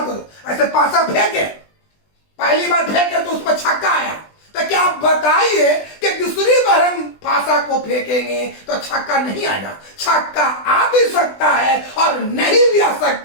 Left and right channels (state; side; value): late; right; 20 ms